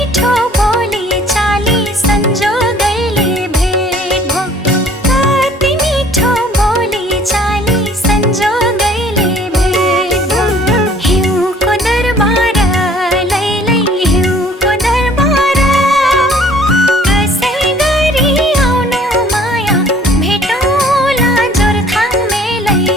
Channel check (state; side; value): normal; both; correlation 0.55